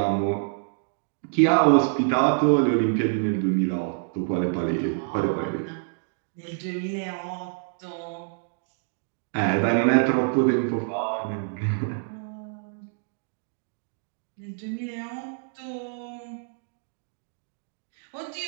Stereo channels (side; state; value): left; silent; digital silence